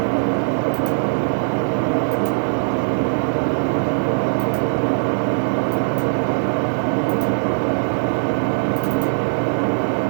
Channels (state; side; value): silent; left; digital silence